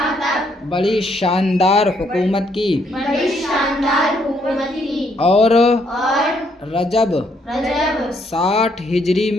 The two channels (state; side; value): normal; both; correlation 0.71